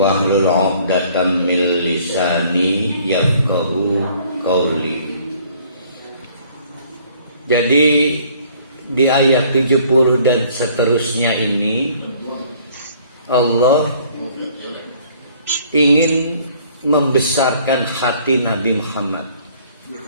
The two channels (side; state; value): both; inverted; correlation -0.58